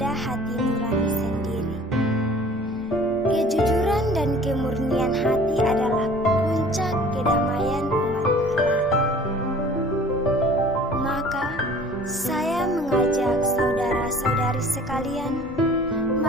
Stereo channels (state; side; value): normal; both; correlation 0.49